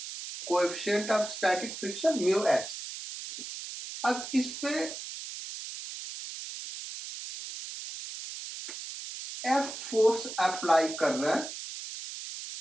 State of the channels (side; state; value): right; noise; hiss, 9 dB below the sound